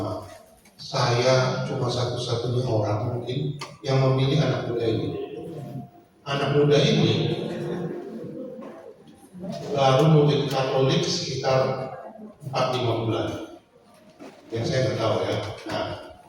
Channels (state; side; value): identical; both; correlation 1.00